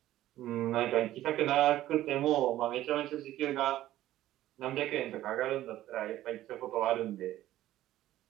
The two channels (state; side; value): quieter; left; 14.2 dB